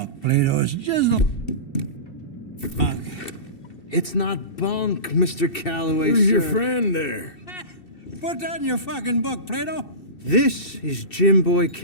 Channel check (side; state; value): right; late; 2.7 ms